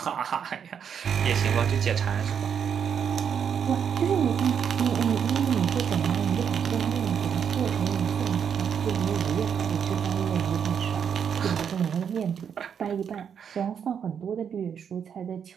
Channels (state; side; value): quieter; left; 7.7 dB